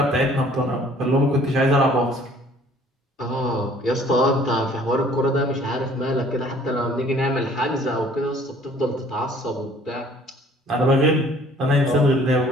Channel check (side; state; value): both; normal; correlation 0.55